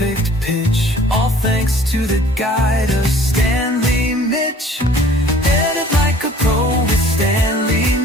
pitch. All thanks to the guide of Stanley Mitch. Edit like a pro with Stanley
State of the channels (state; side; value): normal; both; correlation 0.53